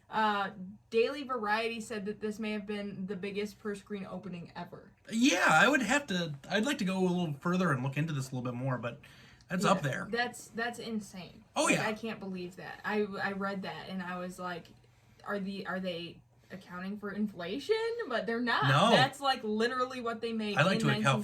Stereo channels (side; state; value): both; identical; correlation 1.00